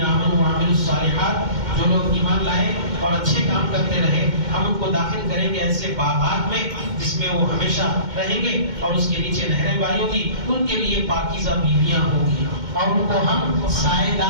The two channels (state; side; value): late; left; 2.1 ms